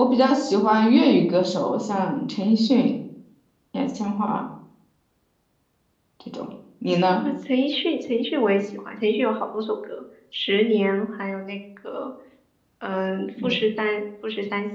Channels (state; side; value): identical; both; correlation 1.00